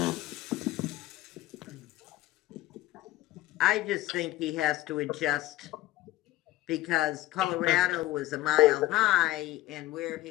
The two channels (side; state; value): right; quieter; 17.0 dB